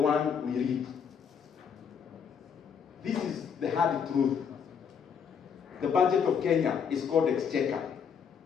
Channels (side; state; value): right; quieter; 7.0 dB